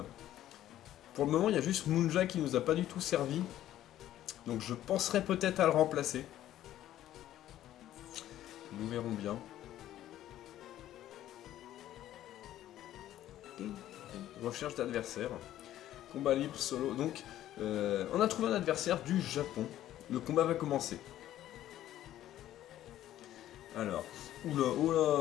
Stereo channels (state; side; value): quieter; right; 12.9 dB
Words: Pour le moment, il y a juste Munja qui nous a pas du tout servi. Donc je penserais peut-être à le remplacer. Nous verrons bien. Recherche d'adversaire. Combat libre solo. Donc, on a trouvé un adversaire du Japon. Le combat va commencer. Alors, oula,